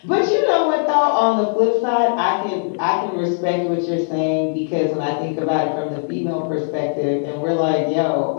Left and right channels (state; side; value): silent; right; digital silence